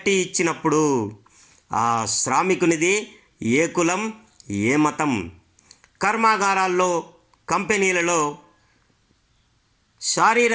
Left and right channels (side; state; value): both; identical; correlation 1.00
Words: ఇచ్చినప్పుడు ఆ శ్రామికునిది ఏ కులం, ఏ మతం. కర్మాగారాల్లో, కంపెనీలలో